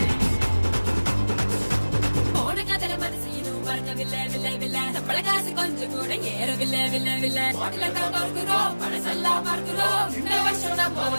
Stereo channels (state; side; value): inverted; both; correlation -1.00